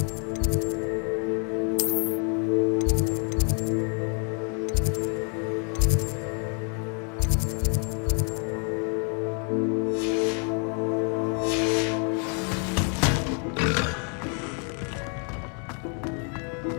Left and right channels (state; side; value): quieter; right; 39.1 dB